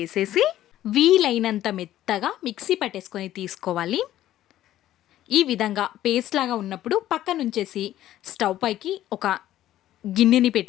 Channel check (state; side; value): quieter; right; 13.3 dB